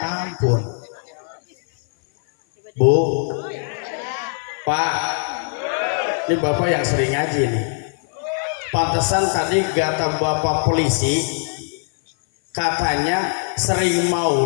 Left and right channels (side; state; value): right; silent; 57 dB below the other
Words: Bu, Pak, ini Bapak yang sering ngaji nih. Pantesan tadi kata Bapak polisi, katanya sering